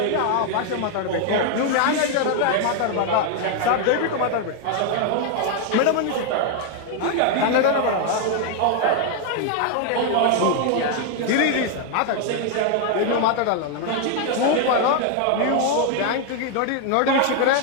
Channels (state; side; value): different; both; correlation 0.00